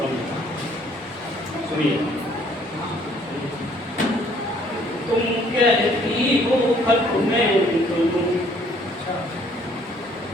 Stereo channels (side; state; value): both; normal; correlation 0.62